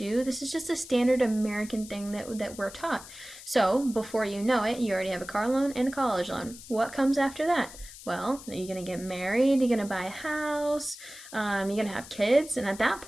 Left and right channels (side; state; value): left; noise; hiss, 16 dB below the sound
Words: This is just a standard American thing that we're taught. So before you know it, you already have a car loan and a college loan. What comes after that? Well, are you going to get married? You're going to buy a house? You're going to have kids? And at that